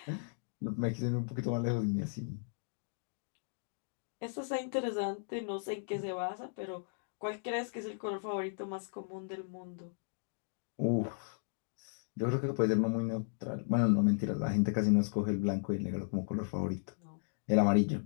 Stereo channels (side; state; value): right; silent; digital silence